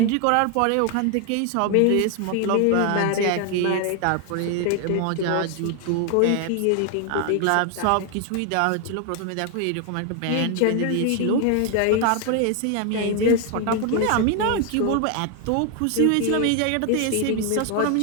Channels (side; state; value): both; different; correlation 0.00